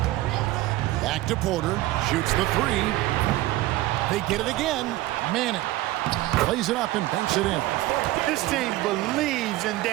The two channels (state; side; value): quieter; left; 17.0 dB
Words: Back to Porter, shoots the 3. They get it again. Manning plays it up and banks it in. This team believes in